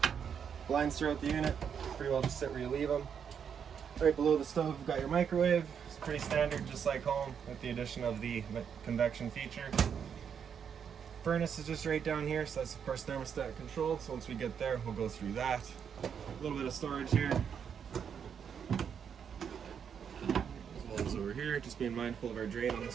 Blinds throughout the unit, pretty well just sit where you leave them. Right below the stove, we've got your microwave. It's pretty standard, just like home, with the addition of the convection feature. Furnace is just right down here, so that's of course thermostat controlled. So once we get there, we'll go through that. A little bit of storage here. As well as over here, just being mindful of our drain on the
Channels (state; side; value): quieter; left; 7.5 dB